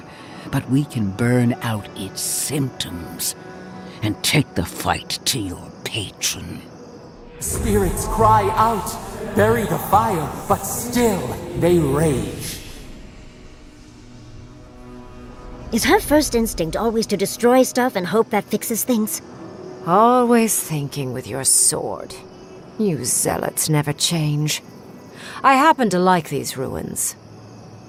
but we can burn out its symptoms and take the fight to your patron. Spirits cry out, bury the fire, but still they rage. Is her first instinct always to destroy stuff and hope that fixes things? Always thinking with your sword. You zealots never change. I happen to like these ruins.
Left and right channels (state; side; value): identical; both; correlation 1.00